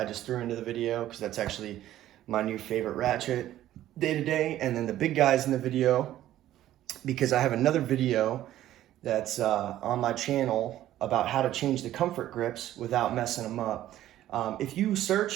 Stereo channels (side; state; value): left; quieter; 13.3 dB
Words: just threw into the video because that's actually my new favorite ratchet day to day. And then the big guys in the video, because I have another video that's on my channel about how to change the comfort grips without messing them up. If you